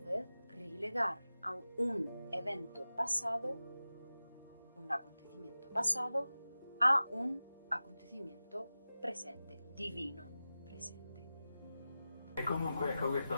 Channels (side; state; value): both; inverted; correlation -0.95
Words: vez relegar a un evento pasado, un acontecimiento pasado, a un acontecimiento presente, divino presente. E comunque ecco questo,